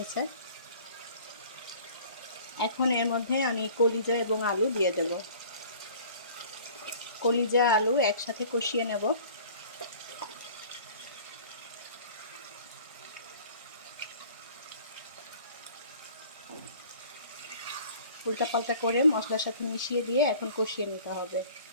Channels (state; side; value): inverted; both; correlation -0.48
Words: এখন এর মধ্যে আমি কলিজা এবং আলু দিয়ে দেব। কলিজা আলু একসাথে কষিয়ে নেব। উল্টাপাল্টা করে মশলার সাথে মিশিয়ে দিয়ে এখন কষিয়ে নিতে হবে।